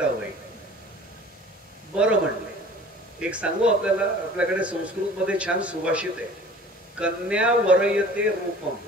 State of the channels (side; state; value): both; normal; correlation 0.46